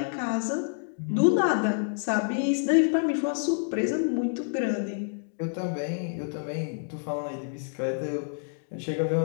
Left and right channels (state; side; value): silent; right; digital silence